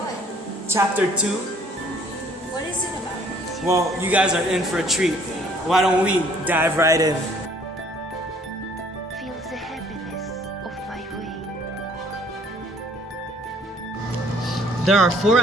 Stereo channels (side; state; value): both; normal; correlation 0.59